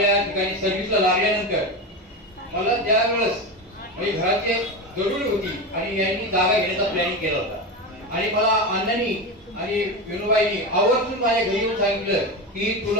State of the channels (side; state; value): both; normal; correlation 0.20